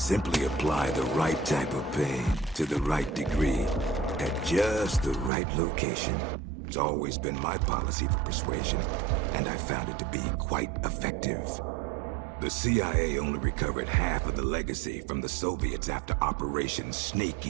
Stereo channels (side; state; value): left; drops out; at 5.3 s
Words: apply the right type of pain to the right degree at just the right location. It's always been my policy for persuasion, and I found it to be quite effective. The CIA only recovered half of the legacy from the Soviets after Operation Snake